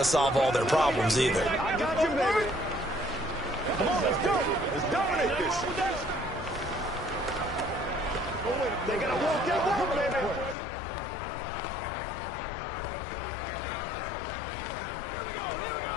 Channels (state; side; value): drops out; right; at 10.6 s